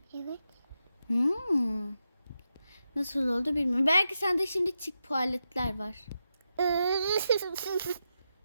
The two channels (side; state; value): both; inverted; correlation -0.87